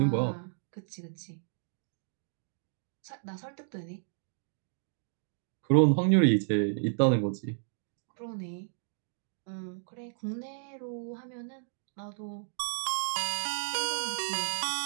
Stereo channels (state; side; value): silent; left; digital silence